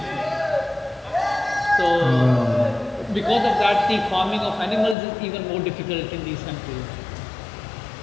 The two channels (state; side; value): drops out; right; at 5.0 s